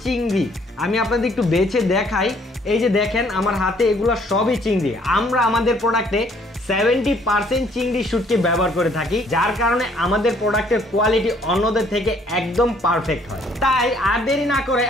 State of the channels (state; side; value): normal; both; correlation 0.62